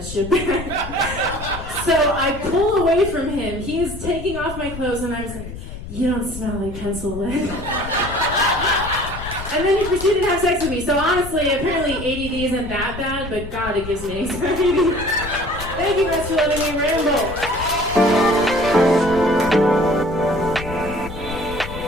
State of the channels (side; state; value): left; noise; rumble, 10 dB below the sound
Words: shit back. So I pull away from him. He is taking off my clothes, and I was like, you don't smell like pencil lead. And then he proceeded to have sex with me. So honestly, apparently ADD isn't that bad, but God, it gives me anxiety. Thank you guys for letting me ramble.